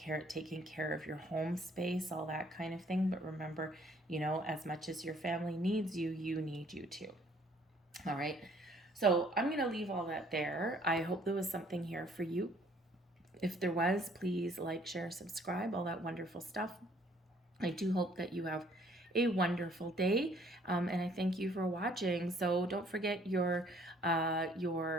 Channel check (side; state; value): both; normal; correlation 0.61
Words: taking care of your home space, all that kind of thing. But remember, as much as your family needs you, you need you too. All right. So I'm going to leave all that there. I hope there was something here for you. If there was, please like, share, subscribe, all that wonderful stuff. I do hope that you have a wonderful day, and I thank you for watching. So don't forget you got